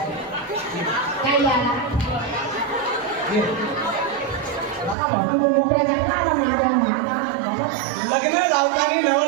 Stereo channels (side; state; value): left; drops out; at 5.0 s